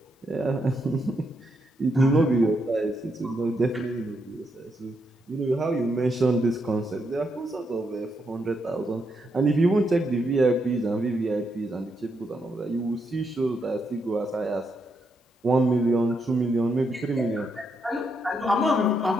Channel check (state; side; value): normal; both; correlation 0.80